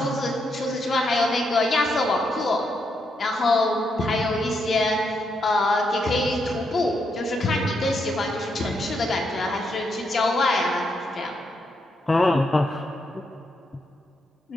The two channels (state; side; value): normal; both; correlation 0.79